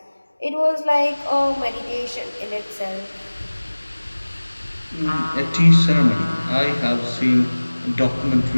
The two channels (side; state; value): both; inverted; correlation -1.00